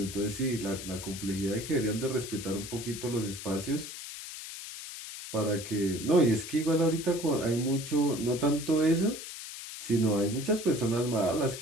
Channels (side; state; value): left; noise; hiss, 10 dB below the sound